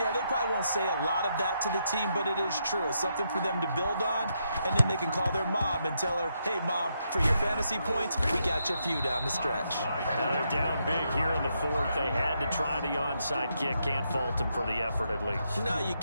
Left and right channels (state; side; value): inverted; both; correlation -0.80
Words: they probably won't say a lot of that to the team, but it is true. It's something for them to build on, and then they can call their mom and tell her, hey, Mom, for your fantasy points, we got you a few down the stretch. Now they're down big here in the fourth. They had to try the onside kick. Can't fault them for the effort, at least. No, you